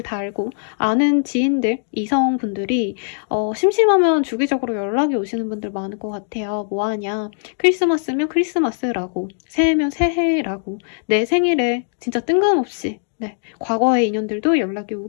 달고 아는 지인들, 이성분들이 심심하면 주기적으로 연락이 오시는 분들 많을 것 같아요. 뭐하냐? 크리스마스면 크리스마스라고, 새해면 새해라고, 내 생일에 진짜 뜬금없이 과거의 인연들도 연락이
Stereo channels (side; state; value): right; silent; digital silence